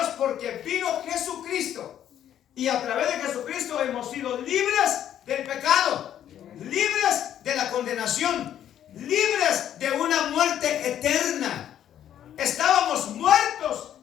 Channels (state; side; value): quieter; right; 10.6 dB